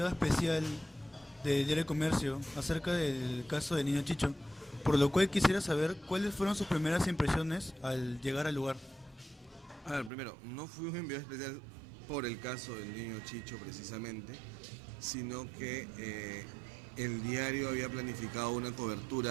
especial del Diario del Comercio acerca del caso del niño Chicho, por lo cual quisiera saber cuáles fueron sus primeras impresiones al llegar al lugar. A ver, primero, no fui un enviado especial por el caso del niño Chicho precisamente, sino que el diario había planificado una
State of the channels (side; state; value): left; drops out; at 10.1 s